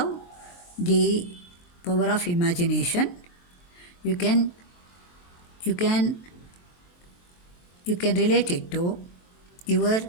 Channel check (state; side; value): late; right; 23 ms